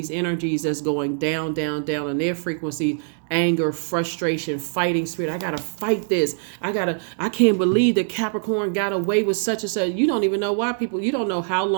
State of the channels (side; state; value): left; silent; digital silence